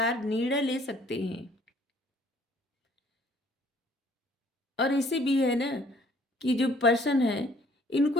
निर्णय ले सकते हैं। और ऐसे भी है ना कि जो पर्सन है, इनको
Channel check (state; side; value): normal; both; correlation 0.59